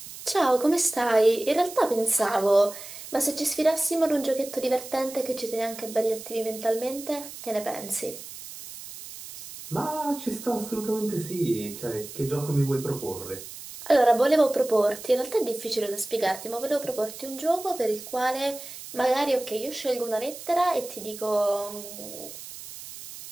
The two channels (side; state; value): right; noise; hiss, 13 dB below the sound